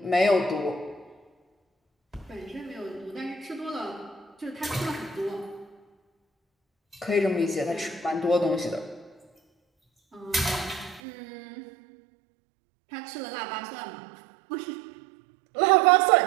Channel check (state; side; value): drops out; left; at 11.0 s